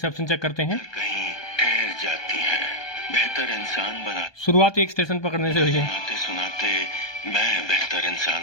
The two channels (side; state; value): right; late; 1.2 ms